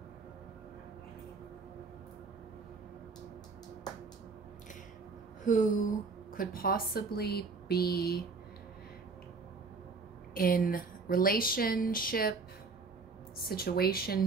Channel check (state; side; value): quieter; left; 4.4 dB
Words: who could possibly be in situationship